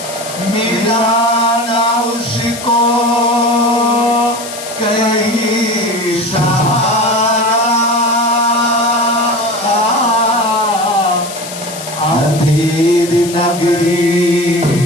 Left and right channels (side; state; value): left; noise; hiss, 11 dB below the sound